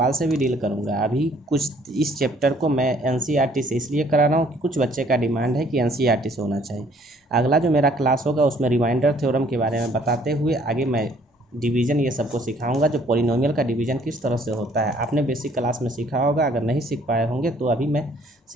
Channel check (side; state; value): both; normal; correlation 0.61